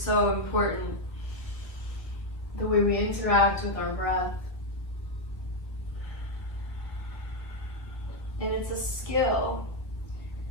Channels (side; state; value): right; late; 1.3 ms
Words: important, the way we interact with our breath. And it's a skill,